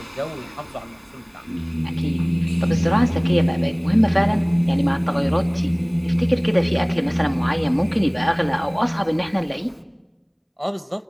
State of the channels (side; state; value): both; identical; correlation 1.00